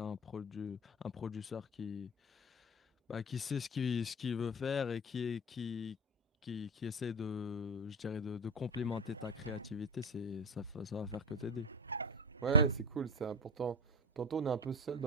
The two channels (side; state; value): both; normal; correlation 0.21